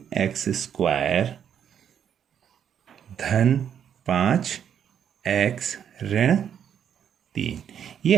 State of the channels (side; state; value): left; quieter; 8.7 dB